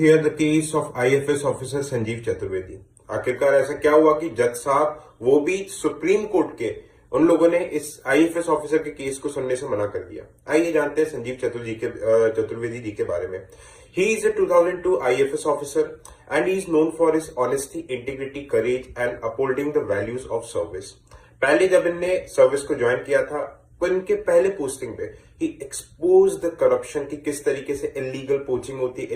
the case of IFS officer Sanjeev Chaturvedi. आखिरकार ऐसा क्या हुआ कि जज साहब वो भी सुप्रीम कोर्ट के उन लोगों ने इस आईएफएस ऑफिसर के केस को सुनने से मना कर दिया। आइए जानते हैं संजीव चतुर्वेदी जी के बारे में। He is a 2002 IFS officer and he is known for his honesty, integrity, courage and upholding the values of service। पहले जब इनने सर्विस को ज्वाइन किया था तो इनके पहले पोस्टिंग पे ही एक्सपोज द करप्शन की किस तरीके से इलीगल पोचिंग होती है,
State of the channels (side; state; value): both; identical; correlation 1.00